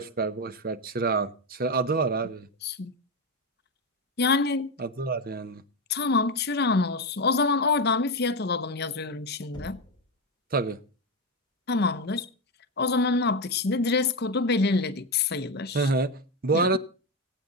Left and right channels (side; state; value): both; normal; correlation 0.12